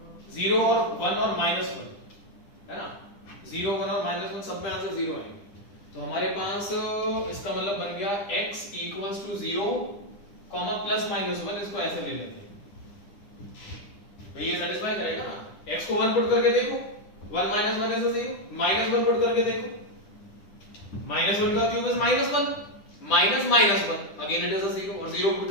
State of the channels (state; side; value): late; right; 10 ms